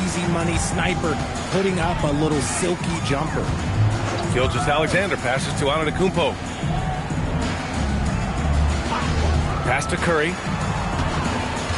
Easy money sniper, putting up a little silky jumper. Gilgeous-Alexander passes to Antetokounmpo. Pass to Curry.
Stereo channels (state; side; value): identical; both; correlation 1.00